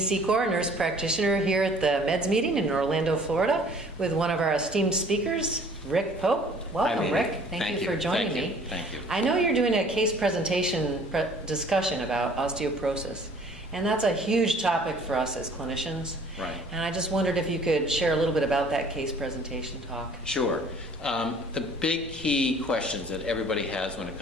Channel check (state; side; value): normal; both; correlation 0.53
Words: nurse practitioner here at the Meds meeting in Orlando, Florida, with one of our esteemed speakers, Rick Pope. Welcome, Rick. Thank you for joining me. Thank you. I know you're doing a case presentation discussion about osteoporosis, and that's a huge topic for us as clinicians. Right. And I just wondered if you could share a little bit about that case presentation talk. Sure. The big key questions that everybody has when it